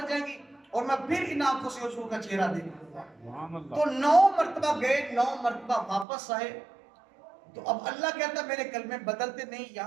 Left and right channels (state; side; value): drops out; left; at 6.1 s